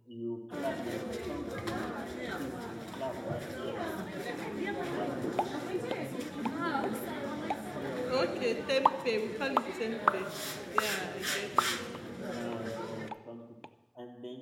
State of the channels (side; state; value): both; identical; correlation 1.00